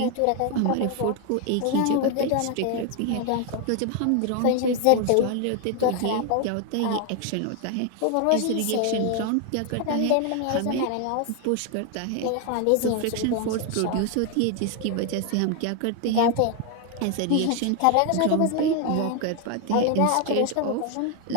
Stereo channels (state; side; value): different; both; correlation 0.01